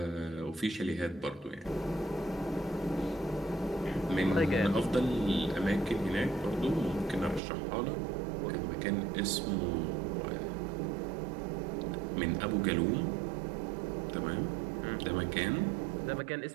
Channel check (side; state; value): left; drops out; at 7.4 s